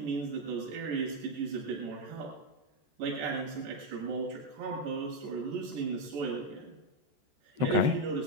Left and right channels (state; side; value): late; left; 14 ms